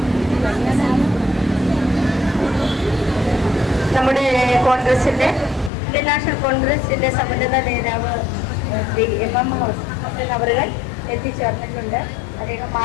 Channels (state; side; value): drops out; right; at 5.7 s